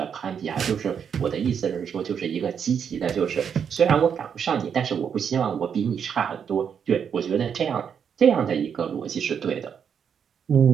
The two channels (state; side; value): quieter; left; 7.5 dB